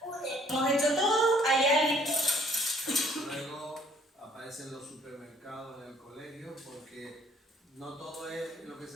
Hemos hecho todo, hay alguien. Luego aparecen los supermercados en el colegio, porque no todo es lo que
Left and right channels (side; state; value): both; normal; correlation 0.60